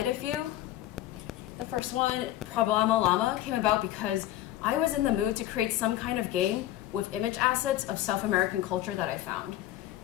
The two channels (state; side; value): quieter; right; 14.0 dB